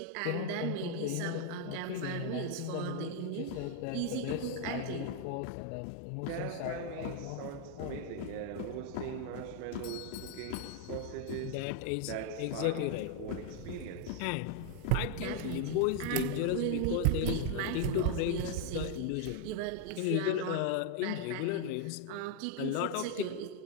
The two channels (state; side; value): different; both; correlation 0.00